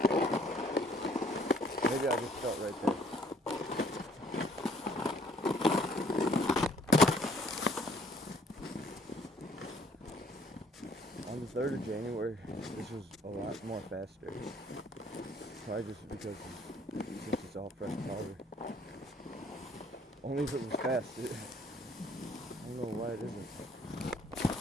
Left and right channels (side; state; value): both; normal; correlation 0.61